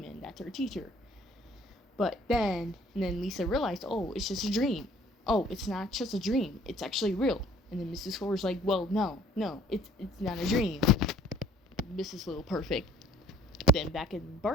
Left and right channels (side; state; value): both; normal; correlation 0.58